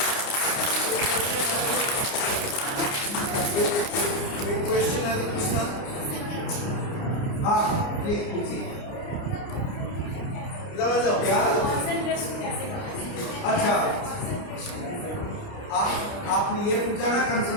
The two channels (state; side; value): late; right; 29 ms